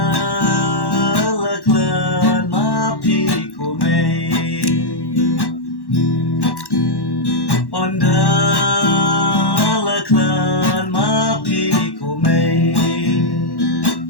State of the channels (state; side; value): late; right; 1.1 ms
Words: la clan ma pi ko me onda la clan ma pi ko me